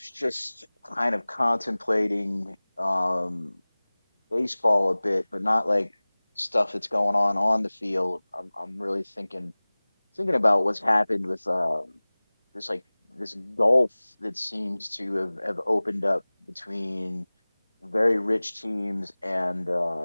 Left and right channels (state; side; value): inverted; both; correlation -1.00